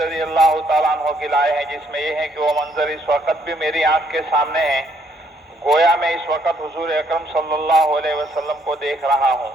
اللہ تعالیٰ عنہ کی لائے ہیں، جس میں یہ ہے کہ وہ منظر اس وقت بھی میری آنکھ کے سامنے ہے، گویا میں اس وقت حضور اکرم صلی اللہ علیہ وسلم کو دیکھ رہا ہوں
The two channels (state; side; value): normal; both; correlation 0.69